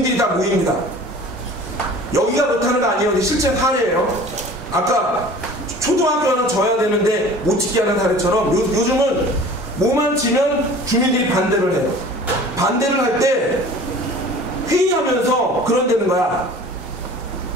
다 모입니다. 여기가 그렇다는 거 아니에요. 실제 사례예요. 아까 초등학교 하나 져야 되는데 못 짓게 하는 사례처럼 요즘은 뭐만 지면 주민들이 반대를 해요. 반대를 할 때 회의하면서 그런 데는 거야.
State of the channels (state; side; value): normal; both; correlation 0.44